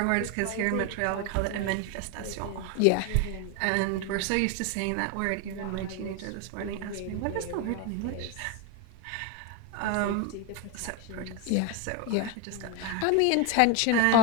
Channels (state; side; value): different; both; correlation 0.02